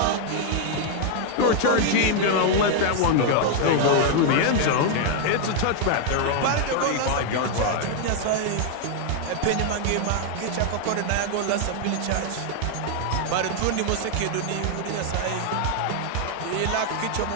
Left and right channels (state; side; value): different; both; correlation 0.00